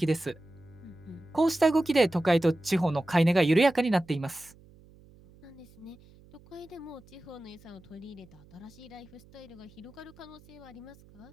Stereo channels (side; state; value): right; noise; hum, 25 dB below the sound